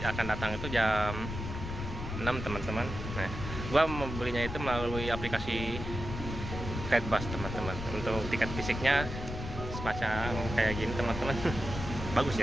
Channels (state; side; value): noise; left; rumble, 6 dB below the sound